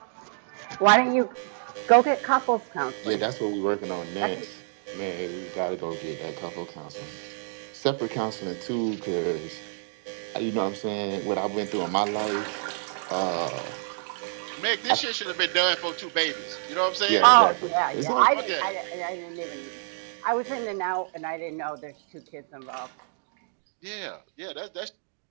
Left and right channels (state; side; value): silent; left; digital silence